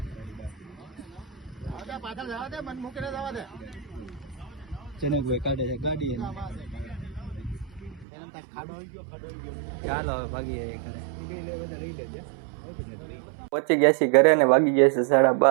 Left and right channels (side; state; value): left; drops out; at 8.1 s